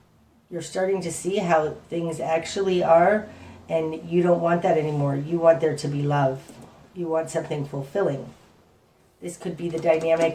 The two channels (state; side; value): identical; both; correlation 1.00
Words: You're starting to see how things actually are, and you don't want that anymore. You want there to be love. You want something fulfilling. This could be the